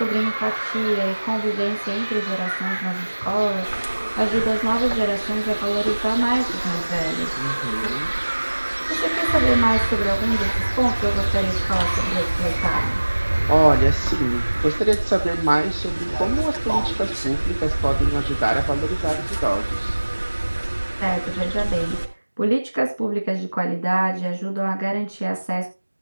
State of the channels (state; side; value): inverted; both; correlation -1.00